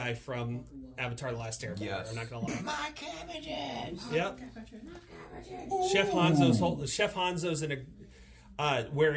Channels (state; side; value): identical; both; correlation 1.00